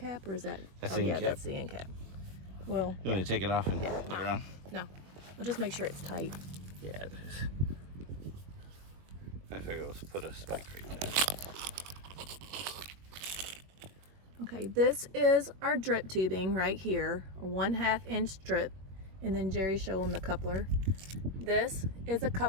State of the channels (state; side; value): late; left; 21 ms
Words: or is that? That's oh the yeah, end cap. that's the end cap. Well, You want me to take it off and put it on? no. We'll just make sure it's tight. Yeah, it is. I figure let's put a spike right there. Okay, this is our drip tubing right here, a 1/2 inch drip, and then Jerry show them the coupler. This is a